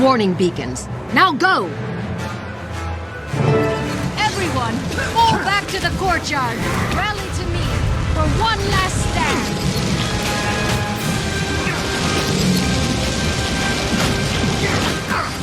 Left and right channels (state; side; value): identical; both; correlation 1.00